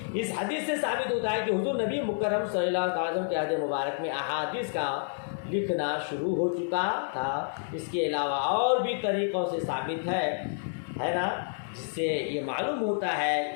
اس حدیث سے ثابت ہوتا ہے کہ حضور نبی مکرم صلی اللہ علیہ وسلم کے عہد مبارک میں احادیث کا لکھنا شروع ہو چکا تھا۔ اس کے علاوہ اور بھی طریقوں سے ثابت ہے نا، جس سے یہ معلوم ہوتا ہے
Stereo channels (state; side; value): silent; right; 58 dB below the other